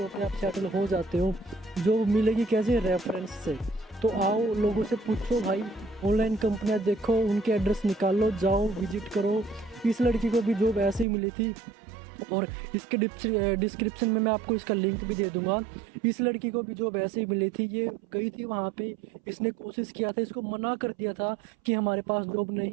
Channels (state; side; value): drops out; left; at 11.1 s